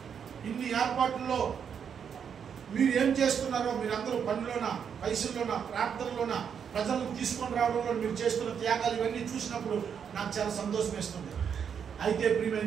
ఇన్ని ఏర్పాట్లలో మీరు ఏం చేస్తున్నారో, మీరందరూ పనిలోన, పైసల్లోన, ప్రార్థనలోన, ప్రజలను తీసుకొని రావడంలో మీరు చేస్తున్న త్యాగాలు ఇవన్నీ చూసినప్పుడు నాకు చాలా సంతోషం వేస్తుంది. అయితే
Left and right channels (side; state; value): left; quieter; 7.5 dB